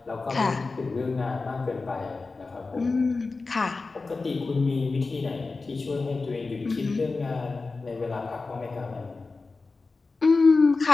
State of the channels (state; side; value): quieter; right; 3.9 dB